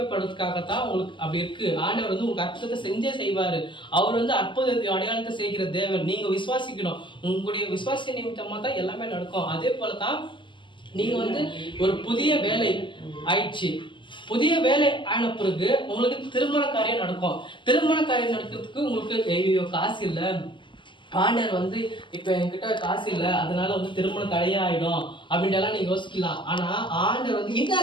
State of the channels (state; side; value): late; right; 0.24 ms